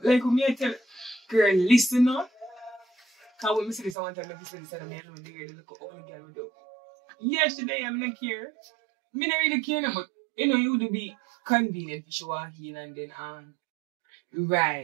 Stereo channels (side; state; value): left; drops out; at 4.0 s